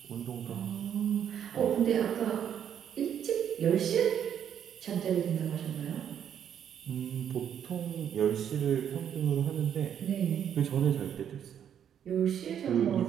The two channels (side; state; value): left; quieter; 9.1 dB